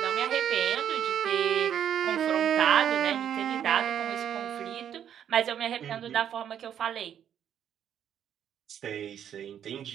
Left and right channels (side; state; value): left; quieter; 9.4 dB